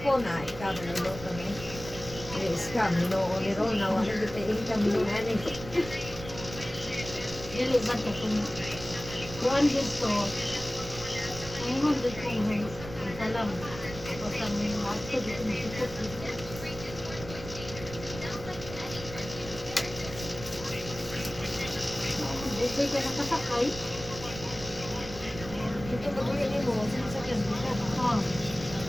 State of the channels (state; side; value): noise; right; rumble, 12 dB below the sound